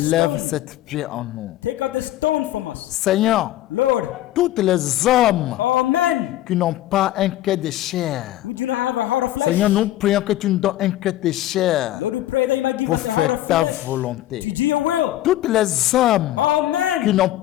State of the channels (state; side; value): quieter; right; 14.3 dB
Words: stone. cette pierre en nous. Take out the stone from us. Seigneur, Lord, tous les hommes all men qui n'ont pas un cœur de chair, who do not have a heart of flesh, Seigneur, nous prions que tu nous donnes un cœur de chair Lord, we pray that you might give pour us a heart faire of ta flesh to volonté. do your will. Tous les hommes All qui men n'ont